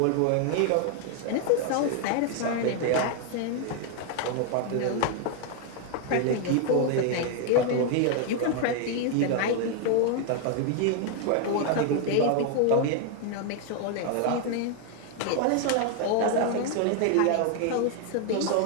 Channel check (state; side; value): different; both; correlation 0.00